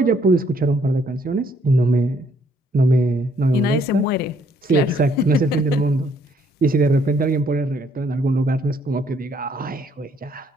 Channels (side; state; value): both; normal; correlation 0.67